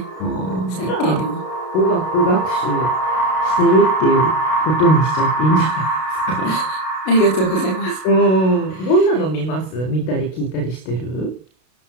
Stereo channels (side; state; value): right; late; 32 ms